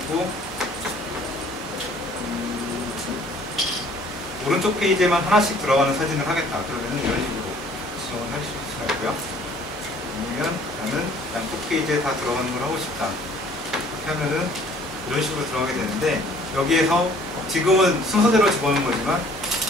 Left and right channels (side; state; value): both; normal; correlation 0.55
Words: 오른쪽 페이지에만 하나씩 들어가는 사진을 하겠다. 그러면 이런 식으로 지정을 하실 수가 있고요. 아니면 나는 양쪽 페이지에 다 들어가는 걸 하고 싶다. 이렇게 하면은 이런 식으로 들어가게 되는데 여기에서 지금은 순서대로 집어넣은 거지만